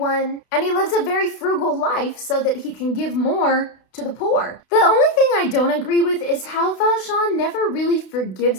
and he lives a very frugal life so that he can give more to the poor. The only thing I don't agree with is how Valjean never really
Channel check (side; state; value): right; late; 32 ms